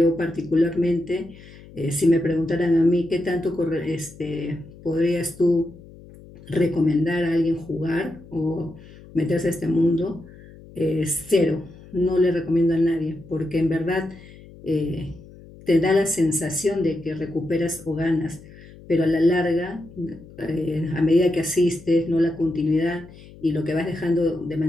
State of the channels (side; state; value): left; noise; hum, 20 dB below the sound